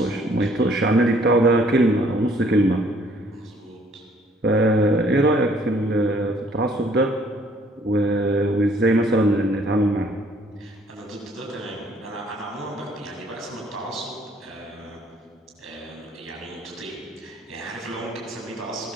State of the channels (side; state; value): both; normal; correlation 0.61